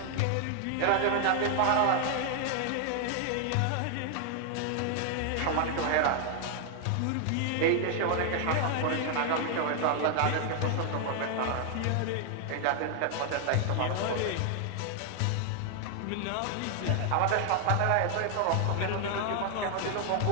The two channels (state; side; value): different; both; correlation 0.00